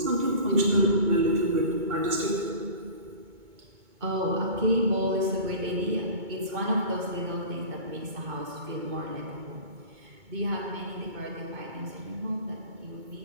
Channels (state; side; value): late; left; 2.2 ms